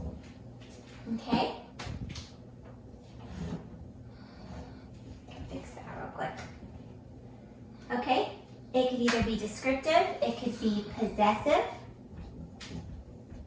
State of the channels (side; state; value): both; identical; correlation 1.00